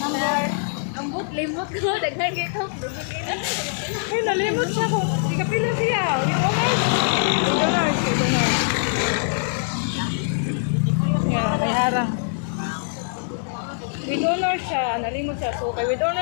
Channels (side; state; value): right; silent; 56 dB below the other